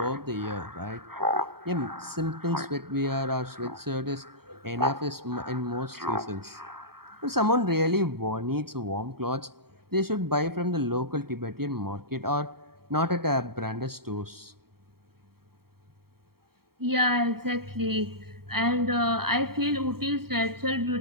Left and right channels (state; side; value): late; left; 0.95 ms